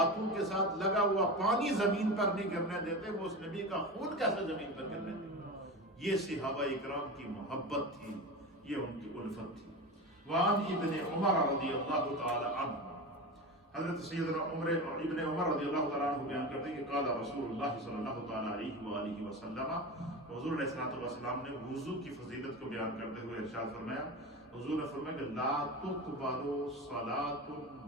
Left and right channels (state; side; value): normal; both; correlation 0.26